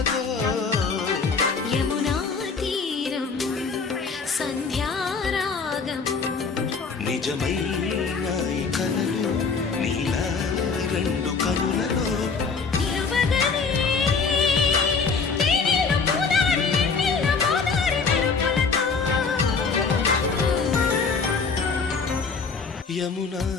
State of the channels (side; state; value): right; quieter; 4.9 dB